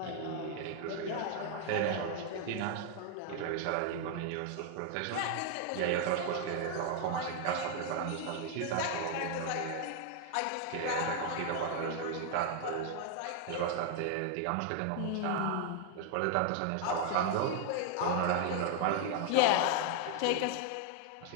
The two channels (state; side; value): different; both; correlation 0.00